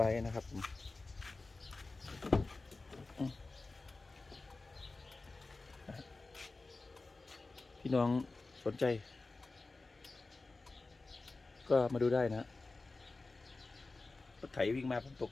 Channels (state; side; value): quieter; right; 3.5 dB